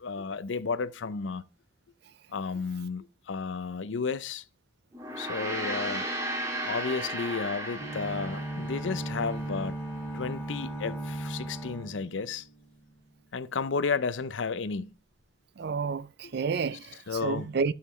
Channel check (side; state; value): both; normal; correlation 0.03